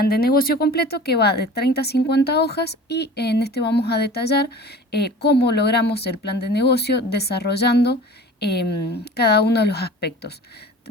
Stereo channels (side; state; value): both; normal; correlation 0.40